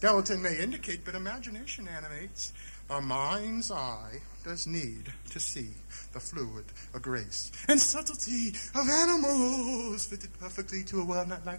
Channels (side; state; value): both; inverted; correlation -1.00